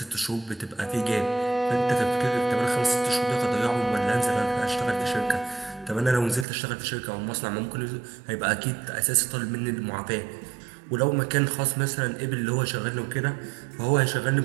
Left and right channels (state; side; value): drops out; left; at 6.5 s